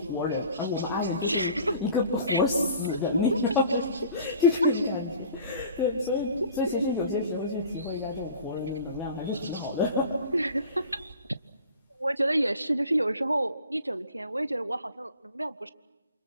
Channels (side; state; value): both; inverted; correlation -0.45